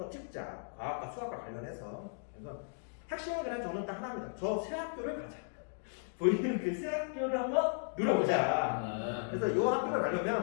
찍자. 과학과 수학과 관련해서. 그래서 핵심은 그냥 저는 딱 하나입니다. 저 새 학교를 가자. 보이는 그 새 학교를 한번 눌러보자. 그래서 이 학교를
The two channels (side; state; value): right; silent; digital silence